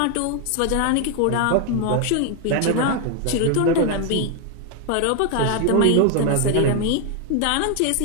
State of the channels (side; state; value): both; different; correlation 0.01